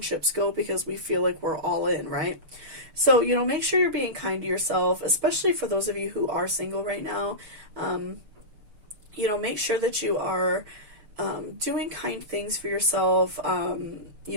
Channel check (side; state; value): left; late; 6.7 ms